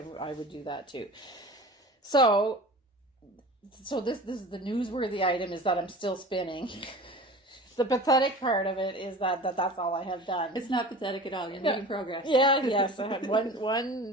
would do that too. So this is the newsworthy item is that I'm still spinning. The pathetic part of it is that's all I have done. It's not pathetic at all. You're making progress. Yeah, yes. I had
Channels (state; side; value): normal; both; correlation 0.38